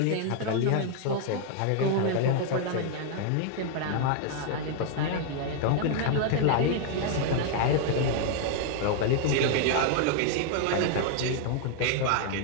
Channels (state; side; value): different; both; correlation 0.00